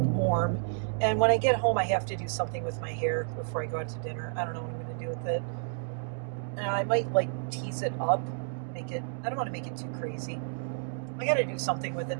warm. And when I get home, I have to do something with my hair before I go out to dinner. I don't know what I'm going to do with it. I might like tease it up. I don't want to make it too crazy. I got to do something with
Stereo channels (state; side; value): silent; left; digital silence